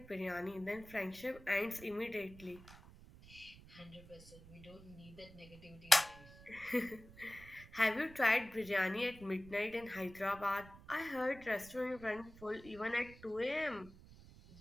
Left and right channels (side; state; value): right; noise; rumble, 19 dB below the sound